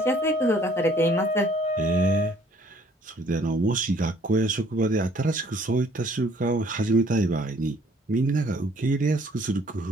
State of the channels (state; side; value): normal; both; correlation 0.59